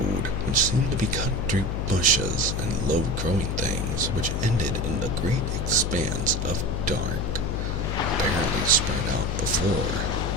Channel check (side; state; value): left; noise; hum, 1 dB below the sound